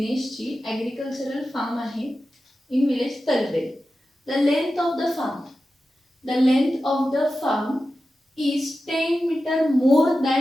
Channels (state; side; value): normal; both; correlation 0.93